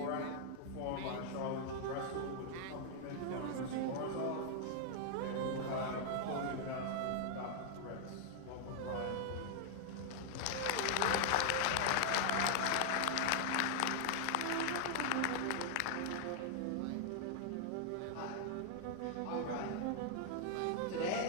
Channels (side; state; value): both; different; correlation 0.00